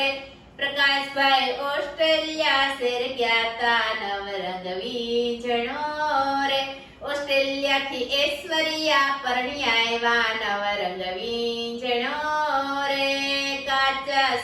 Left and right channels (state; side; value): identical; both; correlation 1.00